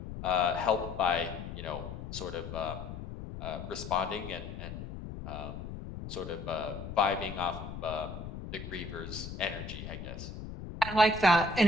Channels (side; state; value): left; noise; rumble, 9 dB below the sound